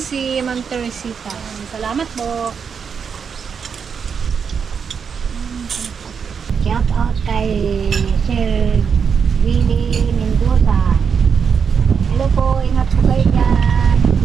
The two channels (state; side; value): quieter; left; 6.5 dB